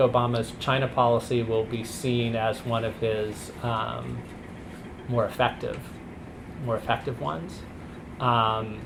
China policy will be seen as one of his more effective ones.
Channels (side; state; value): both; identical; correlation 1.00